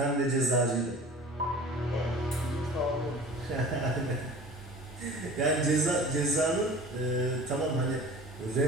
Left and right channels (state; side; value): normal; both; correlation 0.42